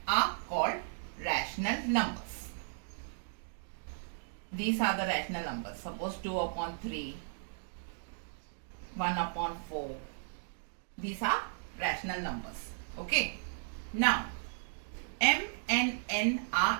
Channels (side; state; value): left; silent; digital silence